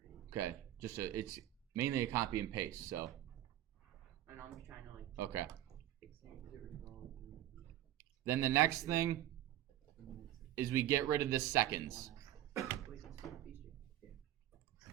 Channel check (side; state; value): left; quieter; 13.4 dB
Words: Okay. It's mainly a copy and paste, so. And I'm just trying to like. Okay. Fix things. Then the next thing is we get rid of the seconds.